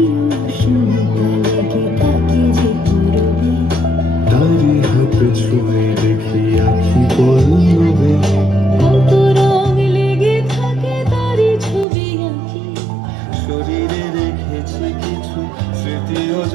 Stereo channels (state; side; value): drops out; left; at 11.9 s